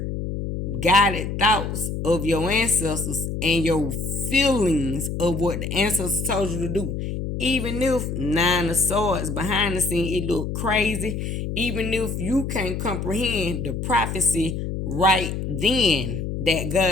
guided thoughts of your ancestors and your feelings of what the ancestors told you to do. Even if Nine of Swords behind the scene, it look crazy. Even if you can't comprehend the prophecy right then that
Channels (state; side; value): noise; left; hum, 4 dB below the sound